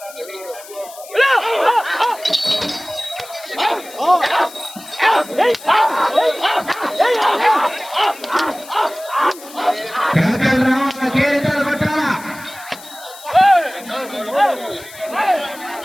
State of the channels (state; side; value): noise; left; hiss, 18 dB below the sound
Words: కేకలు రావాలా, కేరింతలు కొట్టాలా.